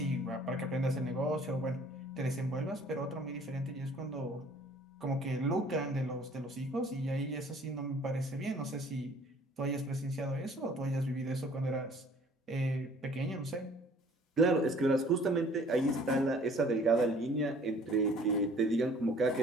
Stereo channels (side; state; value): both; normal; correlation 0.54